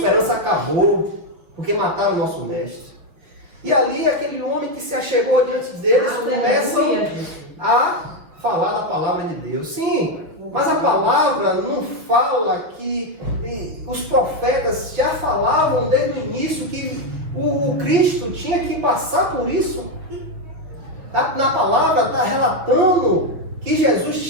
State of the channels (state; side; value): late; left; 6.1 ms